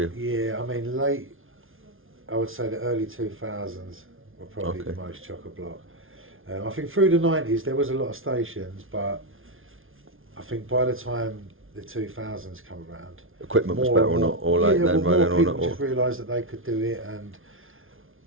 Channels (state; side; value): late; left; 0.59 ms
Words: Yeah, I mean I would say the early 2000s were probably the most chock-a-block. I think through the 90s there was a lot of stations, but I think by the time the 2000s come around, equipment was better or not, or like then, right? More people just realised that they could do it, and